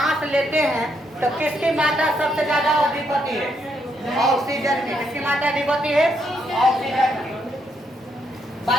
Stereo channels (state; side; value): normal; both; correlation 0.76